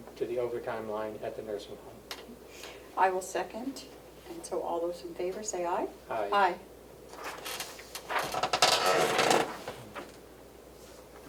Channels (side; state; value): both; identical; correlation 1.00